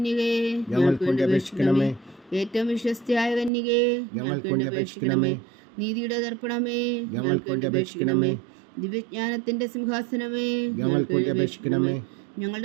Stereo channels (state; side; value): drops out; left; at 3.5 s